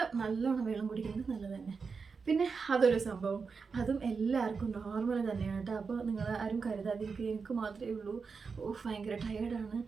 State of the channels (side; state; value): left; quieter; 5.1 dB